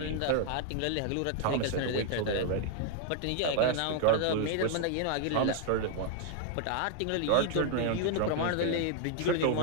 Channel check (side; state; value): both; different; correlation 0.00